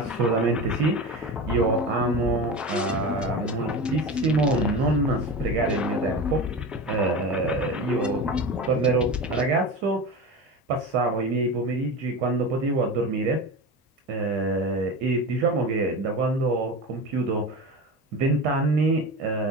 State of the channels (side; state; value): both; normal; correlation 0.27